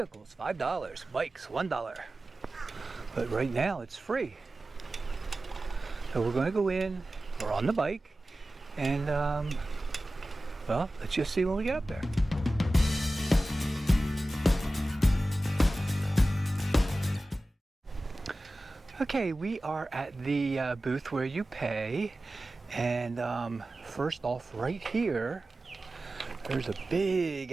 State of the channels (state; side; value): normal; both; correlation 0.95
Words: $5. Bikes, $1. But right now it's free. So we're going to go in, we're on the bike, and well, let's just see when we get up there. Okay, we are at the booth where you pay, and first off, right here, there's a big